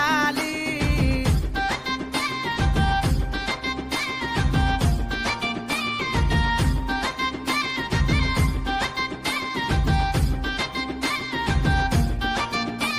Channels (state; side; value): identical; both; correlation 1.00